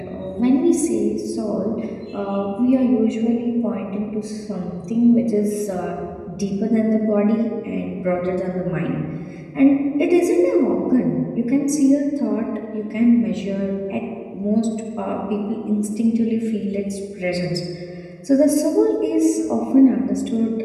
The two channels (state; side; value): identical; both; correlation 1.00